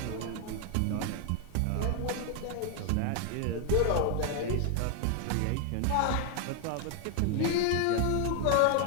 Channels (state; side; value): different; both; correlation 0.00